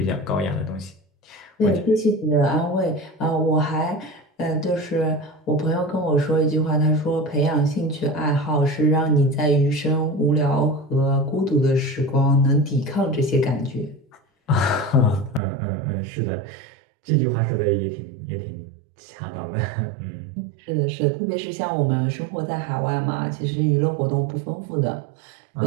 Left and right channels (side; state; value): left; drops out; at 15.4 s